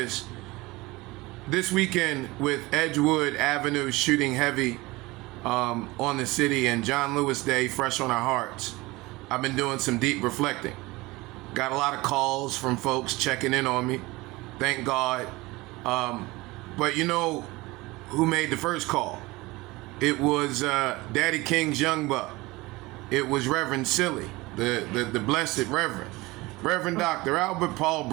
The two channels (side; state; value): left; quieter; 21.5 dB